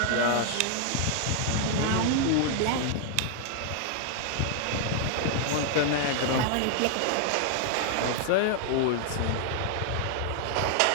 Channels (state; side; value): different; both; correlation 0.00